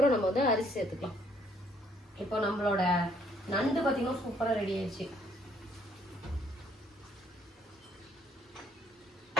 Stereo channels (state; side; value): normal; both; correlation 0.65